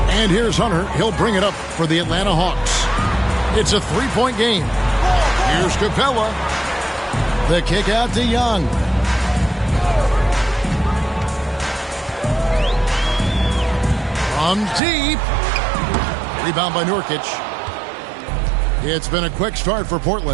And here's Hunter. He'll bring it up for the Atlanta Hawks. It's a three-point game. Here's Capella. The kick out to Young. From deep. Rebound by Nurkic. It's been a quick start for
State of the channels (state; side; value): drops out; left; at 14.8 s